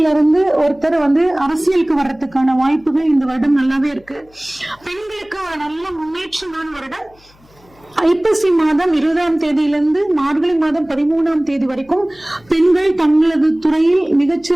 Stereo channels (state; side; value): noise; left; hum, 30 dB below the sound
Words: ஒருத்தர் வந்து அரசியலுக்கு வர்றதுக்கான வாய்ப்புகள் இந்த வருடம் நல்லாவே இருக்கு. பெண்களுக்கு ஒரு நல்ல முன்னேற்றமான வருடம். ஐப்பசி மாதம் 20ஆம் தேதியிலிருந்து மார்கழி மாதம் 13ஆம் தேதி வரைக்கும் பெண்கள் தங்களது துறையில்